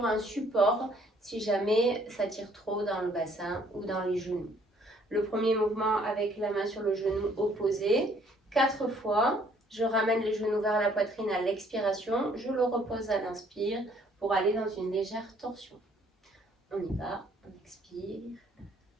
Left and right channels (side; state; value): both; normal; correlation 0.62